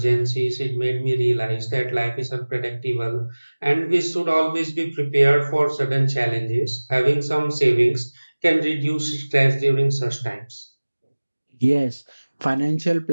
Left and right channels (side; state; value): both; inverted; correlation -1.00